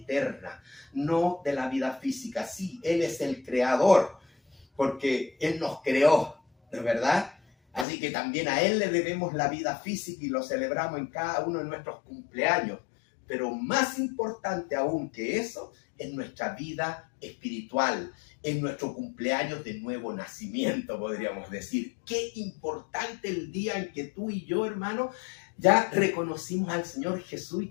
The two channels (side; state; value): right; drops out; at 7.9 s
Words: no de la vida física. Sí, Él es el creador, porque Él nos creó, ¿no es verdad? Así que también a Él le debemos la vida física y lo celebramos en cada uno de nuestros cumpleaños. Pero más importante aún que eso es nuestra vida espiritual, en nuestro cumpleaños de nuevo nacimiento, podríamos decir. Qué importante el día en que tú y yo, hermano, ya reconocimos al Señor Jesús y